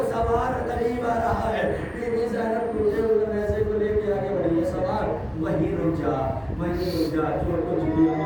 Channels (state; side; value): identical; both; correlation 1.00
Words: سوار قریب آ رہا ہے بیوی زینب ٹوٹے ہوئے ایسے کو لے کے آگے بڑھی ہے سوار وہیں رک جا جو کچھ بھی